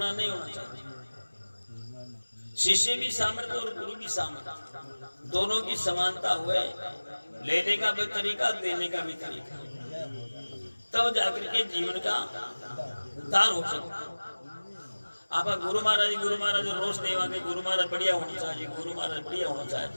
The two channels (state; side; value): inverted; both; correlation -1.00